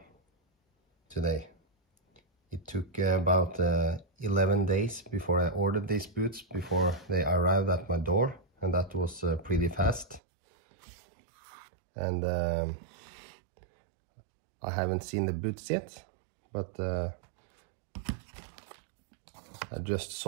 today. It took about 11 days before I ordered these boots, before they arrived at my door, and that was pretty fast. And I haven't seen the boots yet, but I just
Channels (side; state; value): left; drops out; at 10.2 s